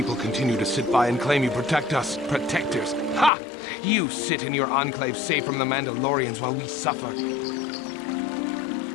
continue to sit by and claim you protect us? Protectors? Ha! You sit in your enclave safe from the Mandalorians while we suffer.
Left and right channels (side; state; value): right; drops out; at 3.3 s